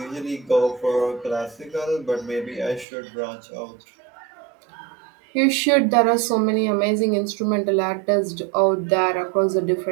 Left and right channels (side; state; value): left; drops out; at 2.9 s